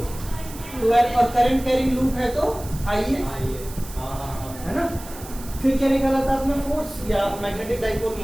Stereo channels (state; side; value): noise; right; hiss, 16 dB below the sound